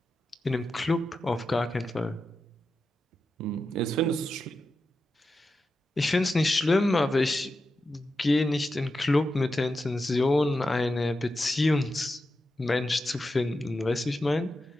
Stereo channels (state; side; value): normal; both; correlation 0.90